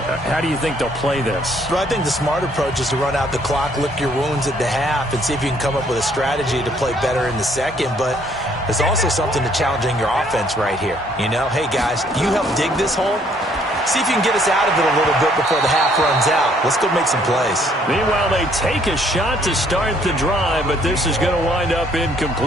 do you think they'll play this? Well, I think the smart approach is to run out the clock, lick your wounds at the half, and see if you can come up with a strategy to play better in the second. But there's also something to challenging your offense right here. You know, hey, guys, you help dig this hole. See if you can get us out of it a little bit before the half runs out. Let's go make some plays. Meanwhile, they take a shot to start the drive, but this is going to wind up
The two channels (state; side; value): normal; both; correlation 0.65